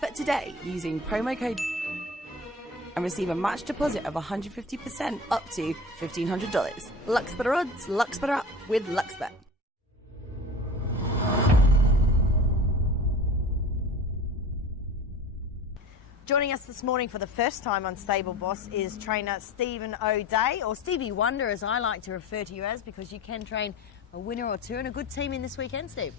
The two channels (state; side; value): normal; both; correlation 0.36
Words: today using promo code and receive a match deposit of 150% up to $1,500. Luxbetter odds, Luxbetter up with Luxbet. Joining us this morning for the first time on Stable Boss is trainer Stephen ODay, or Stevie Wonder as I like to refer to you as, because you can train a winner or two and a good team in this weekend, Steve.